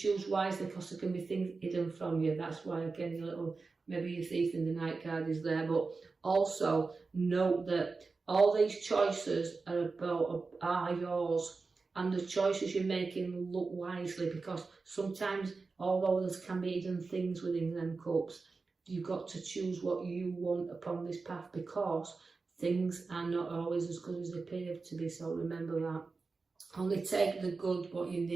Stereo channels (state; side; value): quieter; left; 4.2 dB